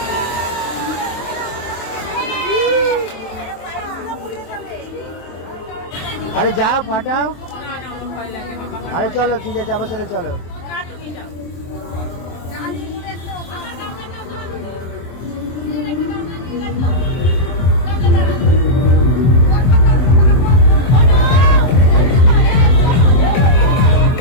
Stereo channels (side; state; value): right; late; 23 ms